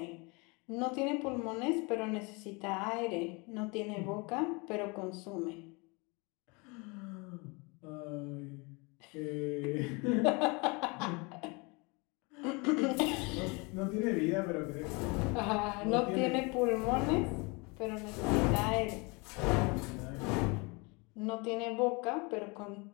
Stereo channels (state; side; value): quieter; right; 28.6 dB